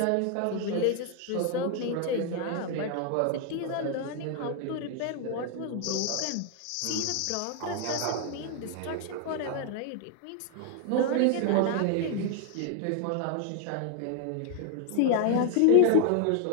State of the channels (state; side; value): different; both; correlation 0.00